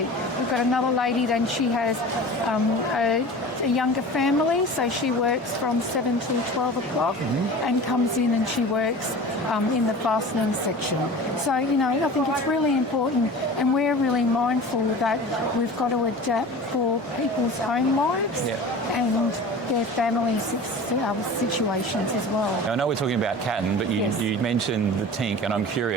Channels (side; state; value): both; normal; correlation 0.37